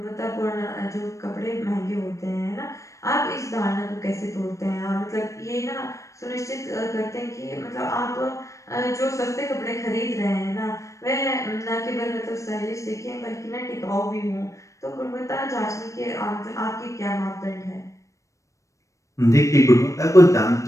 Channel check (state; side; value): late; right; 0.15 ms